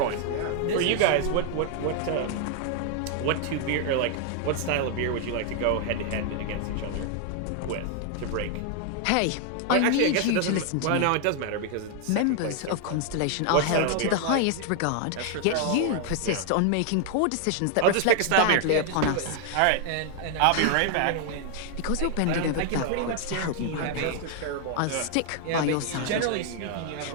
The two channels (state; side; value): different; both; correlation 0.00